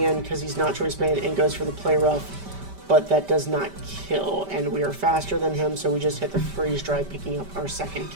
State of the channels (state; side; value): late; left; 5.1 ms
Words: in because he's not Choice Band and goes for the Play Rough, but that does not kill, and we are faster than him, so we just hit the Freeze Dry, picking up our second